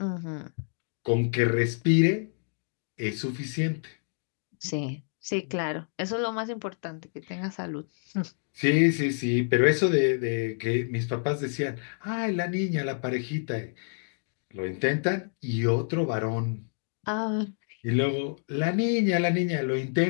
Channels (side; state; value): right; silent; digital silence